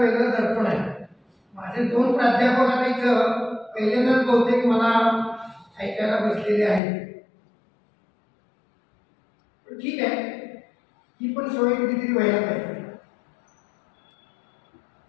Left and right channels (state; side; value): drops out; right; at 6.8 s